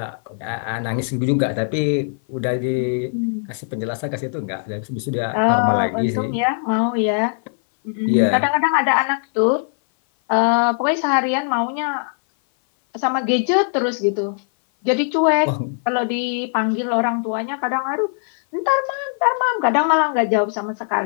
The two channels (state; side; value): silent; right; 57 dB below the other